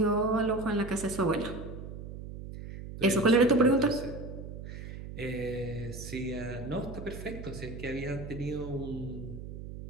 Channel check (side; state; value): right; noise; hum, 10 dB below the sound